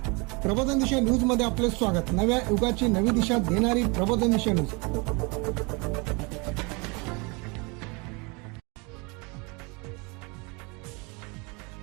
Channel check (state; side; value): quieter; left; 29.3 dB